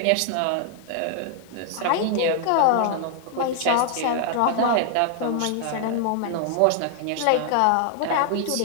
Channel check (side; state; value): both; different; correlation 0.00